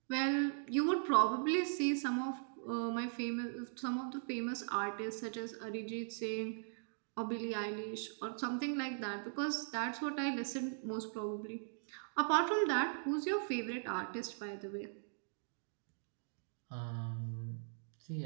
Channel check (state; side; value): silent; left; digital silence